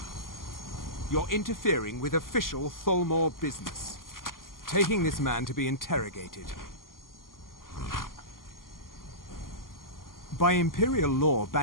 You're interfering with official Tholmor business. Taking this man to be interrogated. By Imperial law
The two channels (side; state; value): right; late; 0.91 ms